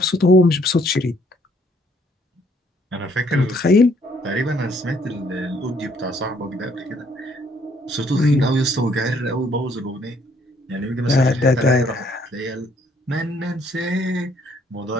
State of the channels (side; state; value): both; normal; correlation 0.66